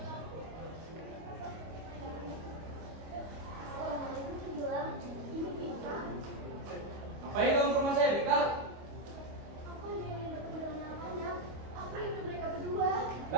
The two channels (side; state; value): left; late; 25 ms